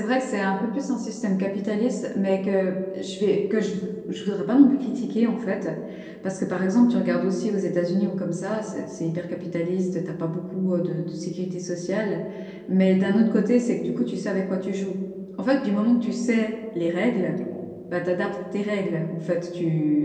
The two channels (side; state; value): both; identical; correlation 1.00